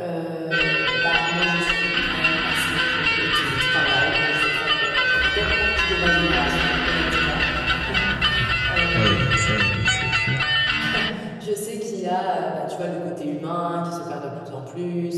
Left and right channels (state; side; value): identical; both; correlation 1.00